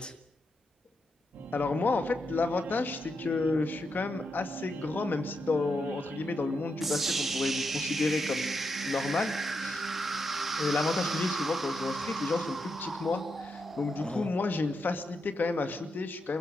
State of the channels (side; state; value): both; normal; correlation 0.83